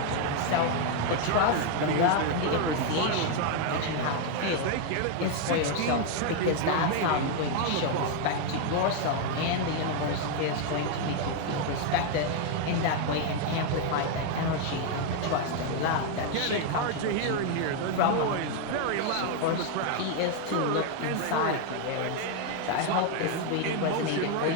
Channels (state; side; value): different; both; correlation 0.01